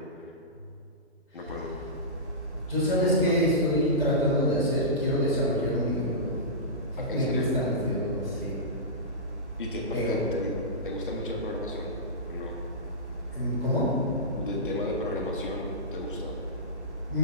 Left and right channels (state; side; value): normal; both; correlation -0.18